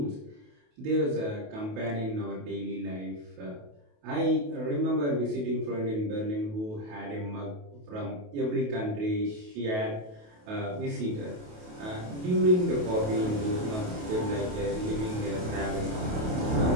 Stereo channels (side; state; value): left; late; 28 ms